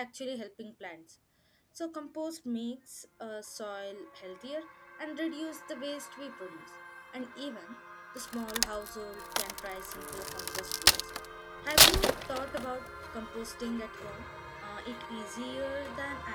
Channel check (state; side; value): identical; both; correlation 1.00